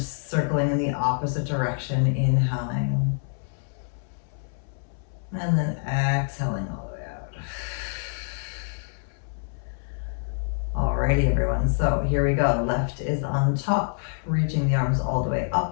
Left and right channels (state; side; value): silent; right; 61 dB below the other